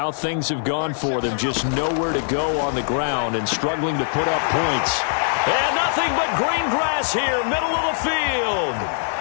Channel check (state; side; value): silent; right; digital silence